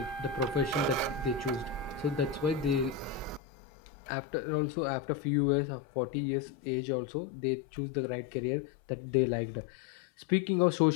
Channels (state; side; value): drops out; right; at 3.4 s